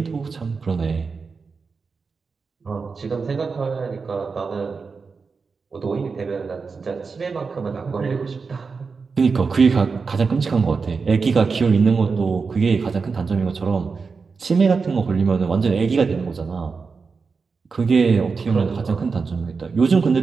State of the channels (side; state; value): left; quieter; 4.9 dB